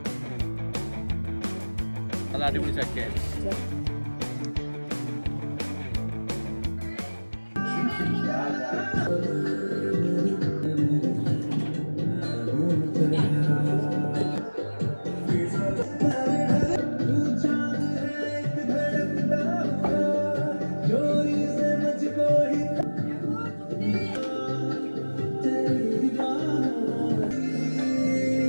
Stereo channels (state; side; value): inverted; both; correlation -1.00